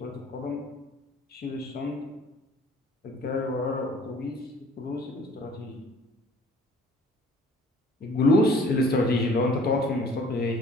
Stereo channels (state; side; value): normal; both; correlation 0.53